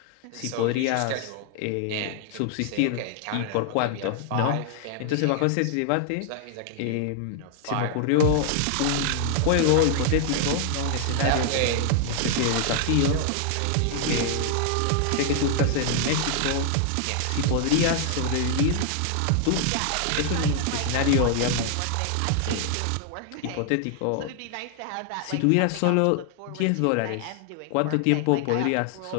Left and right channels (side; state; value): both; different; correlation 0.00